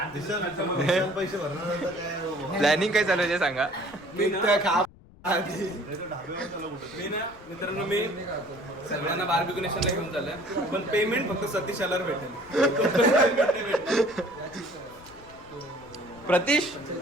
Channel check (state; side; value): noise; left; rumble, 23 dB below the sound